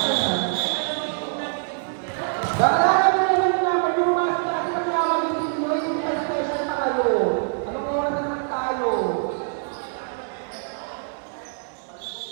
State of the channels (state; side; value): silent; left; digital silence